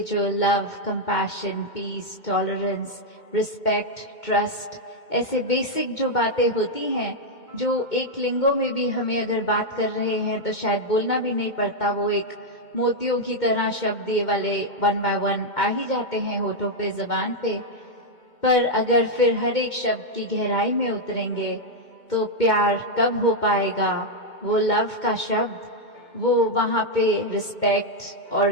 जो love, compassion, peace, tolerance, respect, trust, ऐसे बेसिक जो बातें होती हैं, जो एक लिंगों में भी हमें अगर बात कर रहे हैं तो शायद बोलना भी नहीं पड़ता, वो एक मोतियों की तरह शब्द ये वाले 1 by 1 आ ही जाते हैं होठों पे, जबान पे। पर अगर फिर हर एक शब्द की गहराई में उतरेंगे तो प्यार कब हो पाएगा, वो लव का शब्द, वो वहां पे रिस्पेक्ट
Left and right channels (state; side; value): late; right; 2.2 ms